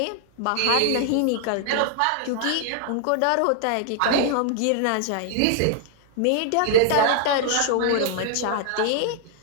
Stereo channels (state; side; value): different; both; correlation 0.00